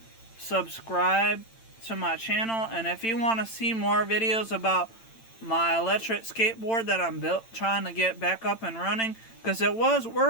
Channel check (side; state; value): right; late; 8.9 ms